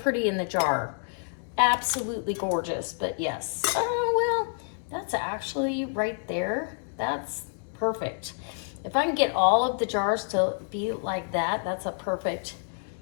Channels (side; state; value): right; silent; 59 dB below the other